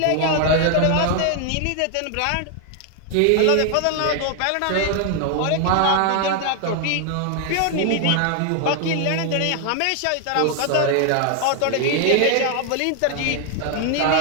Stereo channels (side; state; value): both; different; correlation 0.00